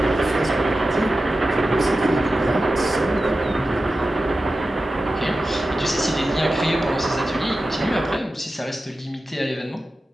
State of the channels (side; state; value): both; normal; correlation 0.93